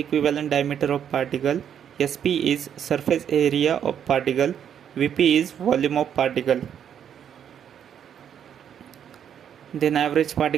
diameter of particle, Sp is surface area of particle, Vp is volume of particle. Then average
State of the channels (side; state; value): left; quieter; 8.8 dB